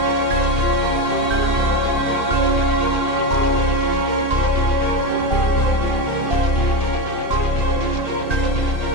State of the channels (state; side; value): late; right; 2.6 ms